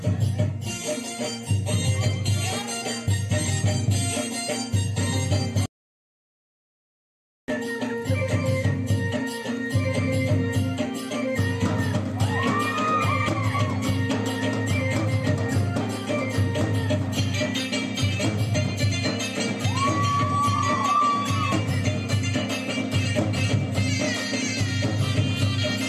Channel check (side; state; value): both; identical; correlation 1.00